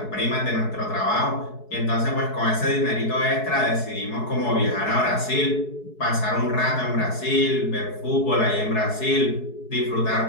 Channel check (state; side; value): late; right; 4.7 ms